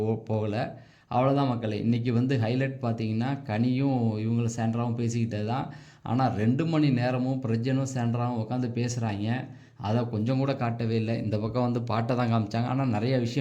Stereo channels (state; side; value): identical; both; correlation 1.00